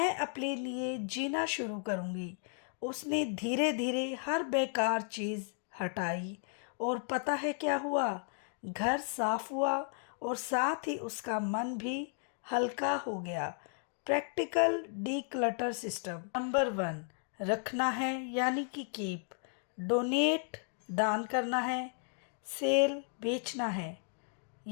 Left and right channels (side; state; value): right; silent; 55 dB below the other